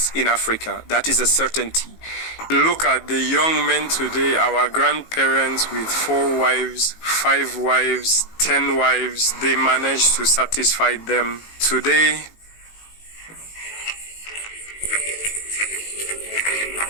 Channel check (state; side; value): late; right; 18 ms